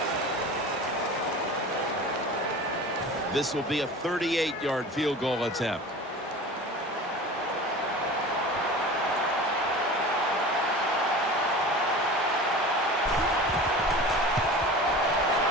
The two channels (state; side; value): normal; both; correlation 0.36